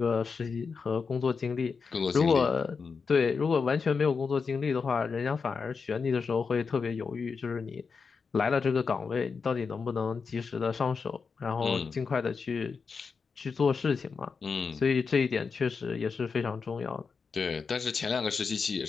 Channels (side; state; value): right; quieter; 5.2 dB